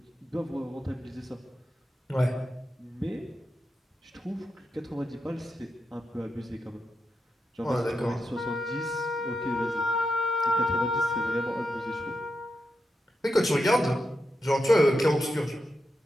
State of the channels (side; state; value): both; normal; correlation 0.86